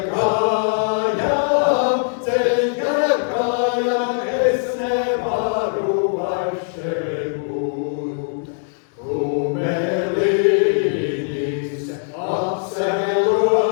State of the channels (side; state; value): right; silent; digital silence